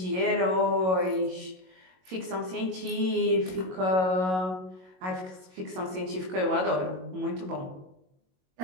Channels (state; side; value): late; left; 22 ms